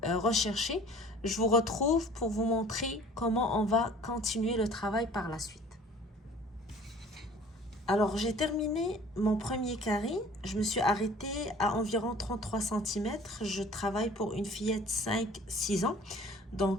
recherchée, je vous retrouve pour vous montrer comment on va continuer le travail par la suite. Alors, j'ai terminé mon premier carré. Je me suis arrêtée à environ 33 cm. Je travaille pour une fillette 5-6 ans.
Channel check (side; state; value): both; normal; correlation 0.49